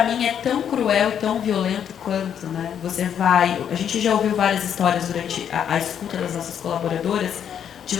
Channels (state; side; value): quieter; right; 8.8 dB